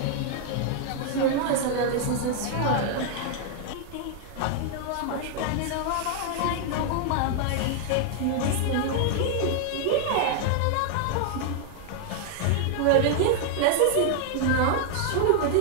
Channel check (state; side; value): different; both; correlation 0.00